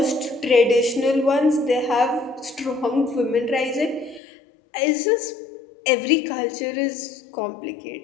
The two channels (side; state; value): right; drops out; at 4.2 s